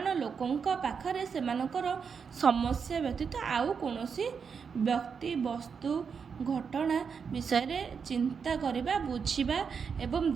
ଲୋକଙ୍କ ପାଖରେ ସେମାନଙ୍କର ସମସ୍ୟା ବ୍ୟତୀତ ଆଉ କୌଣସି ବ୍ୟକ୍ତି ବସ୍ତୁ ଘଟଣା ବିଷୟରେ ଚିନ୍ତା କରିବା, ବୁଝିବା ଏବଂ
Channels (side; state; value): left; quieter; 6.2 dB